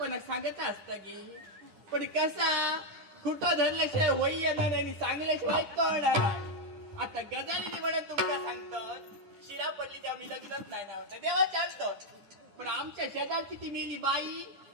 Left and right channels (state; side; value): late; left; 10 ms